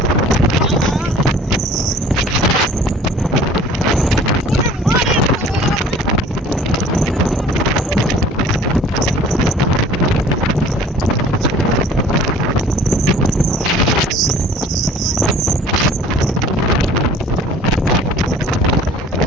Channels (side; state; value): both; normal; correlation 0.49